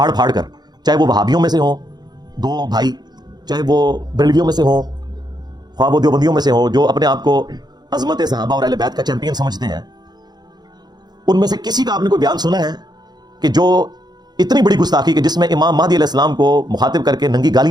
پھاڑ کر، چاہے وہ وہابیوں میں سے ہوں دو بھائی، چاہے وہ بریلویوں میں سے ہوں، خواہ وہ دیوبندیوں میں سے ہوں، جو اپنے آپ کو عظمت صحابہ اور اہل بیت کا چیمپئن سمجھتے ہیں، ان میں سے کسی کا آپ نے کوئی بیان سنا ہے کہ جو اتنی بڑی گستاخی کہ جس میں امام مہدی علیہ السلام کو مخاطب کر کے ننگی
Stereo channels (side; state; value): left; late; 0.20 ms